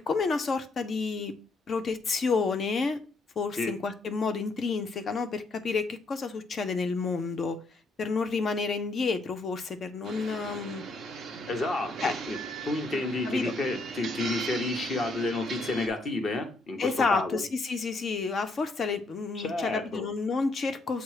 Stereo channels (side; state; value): right; quieter; 3.2 dB